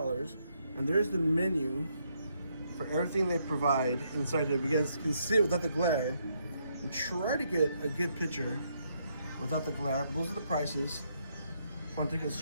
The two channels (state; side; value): inverted; both; correlation -0.75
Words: and there's the menu for everything they provide inside here. You guys can see it without the glare, and try to get a good picture without the glare. Those are the prices. I want to take a